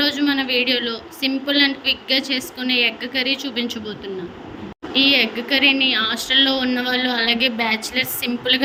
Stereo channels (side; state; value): both; identical; correlation 1.00